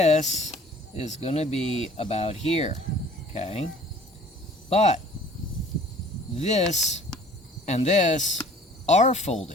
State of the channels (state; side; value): normal; both; correlation 0.51